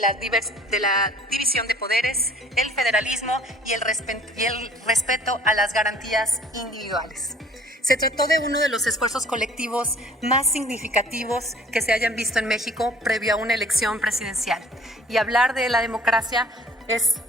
la división de poderes, el federalismo y el respeto a las garantías individuales. Se trató de uno de los esfuerzos colectivos más significativos que se hayan visto en México previo a una elección presidencial. Y hablar de la democracia es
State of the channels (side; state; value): both; normal; correlation 0.53